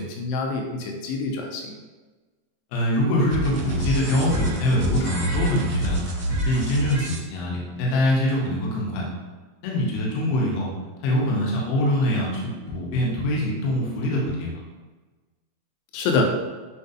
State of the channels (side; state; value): right; late; 23 ms